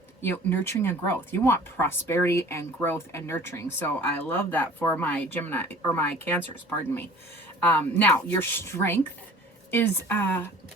nurturing and growth. You want prosperity and growth and nurturing. So I love that for my Gemini, or my Cancers. Pardon me. Now your strength is the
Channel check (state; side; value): normal; both; correlation 0.47